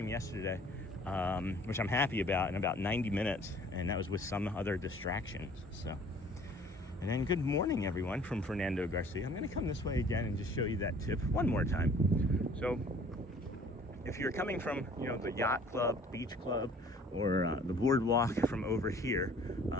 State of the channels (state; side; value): normal; both; correlation 0.53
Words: yesterday, which I'm happy about, in about 90 minutes, and that was with some other distractions. So. And then good morning, everyone, from Fernando Garcia. I'm going to come this way again and just show you that tip one more time. So if you're coming from, the yacht club, beach club, or the boardwalk from over here,